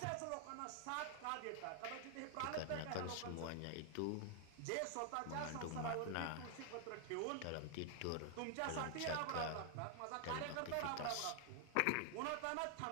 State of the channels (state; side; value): different; both; correlation 0.00